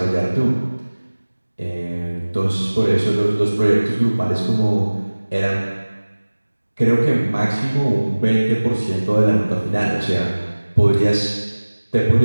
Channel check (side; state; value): both; inverted; correlation -1.00